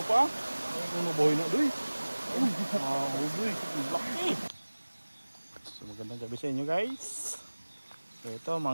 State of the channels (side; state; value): both; inverted; correlation -1.00